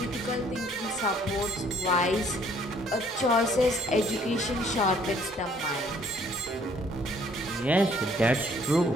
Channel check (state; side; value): normal; both; correlation 0.61